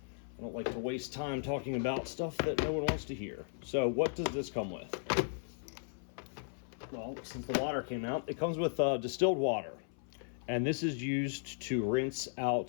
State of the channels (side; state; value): right; silent; 54 dB below the other